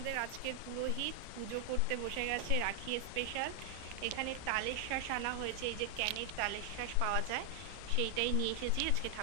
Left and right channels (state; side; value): different; both; correlation 0.00